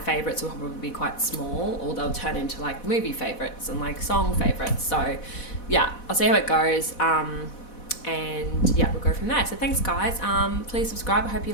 will probably be quite small, or they'll turn into like movie favourites and like song favourites. So yeah, I'll see how it goes. And yeah, we'll go from there. So thanks guys. Please subscribe. I hope you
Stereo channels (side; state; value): right; late; 4.1 ms